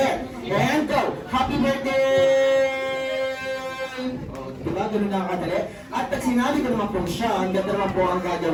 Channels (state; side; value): identical; both; correlation 1.00